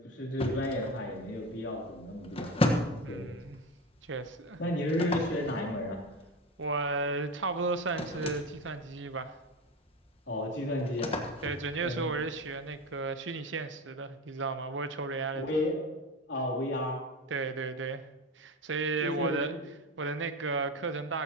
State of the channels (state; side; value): normal; both; correlation 0.25